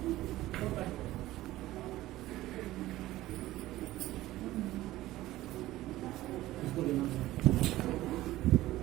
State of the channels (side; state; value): left; quieter; 16.3 dB